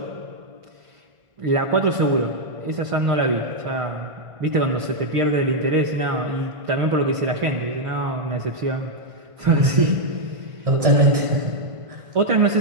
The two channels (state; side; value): late; left; 1.5 ms